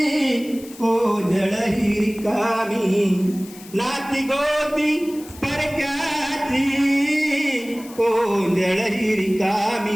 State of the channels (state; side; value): noise; left; hiss, 19 dB below the sound